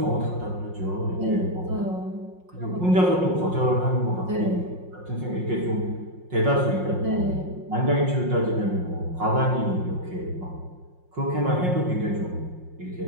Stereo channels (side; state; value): left; late; 5.6 ms